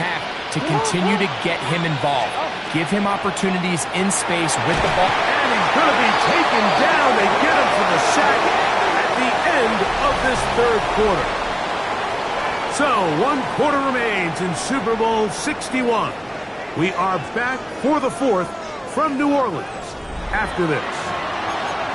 to continue to get him involved. Give him opportunities in space with the ball. And he's going to be taken down. They get him for the sack at the end of this third quarter. So 1 quarter remains in Super Bowl 61. We are back for the 4th from New Orleans after this.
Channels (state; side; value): identical; both; correlation 1.00